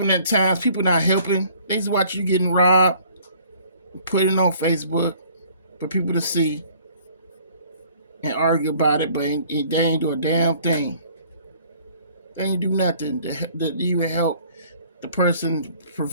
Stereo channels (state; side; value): inverted; both; correlation -0.56